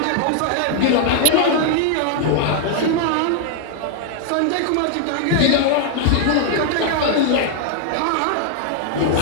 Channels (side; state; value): both; different; correlation 0.00